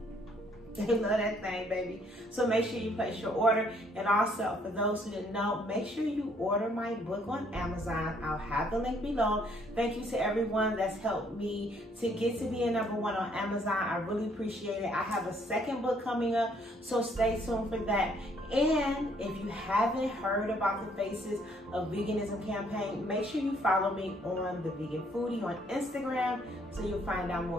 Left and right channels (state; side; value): normal; both; correlation 0.66